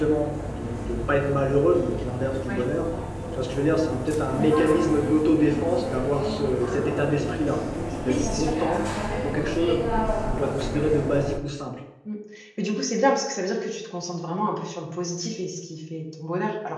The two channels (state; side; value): identical; both; correlation 1.00